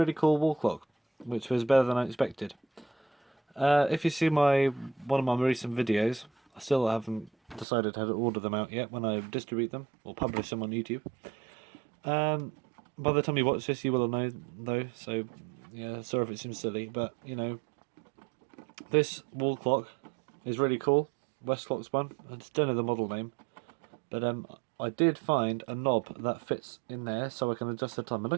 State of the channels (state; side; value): drops out; left; at 7.7 s